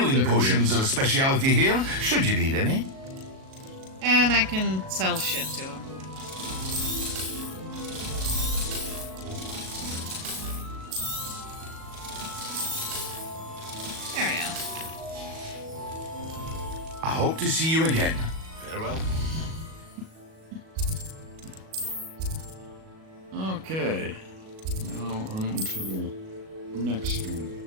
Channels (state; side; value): late; left; 37 ms